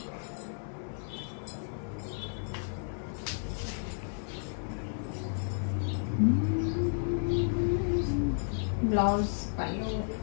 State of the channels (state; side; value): silent; right; 56 dB below the other